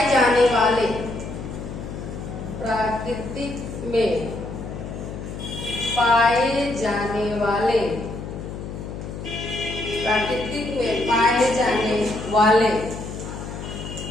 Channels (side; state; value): left; noise; hum, 8 dB below the sound